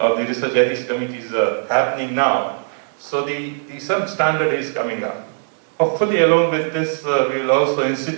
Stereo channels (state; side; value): silent; left; digital silence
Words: research ethics committees happening now. So some standard is coming up. Hopefully, along with this, we will also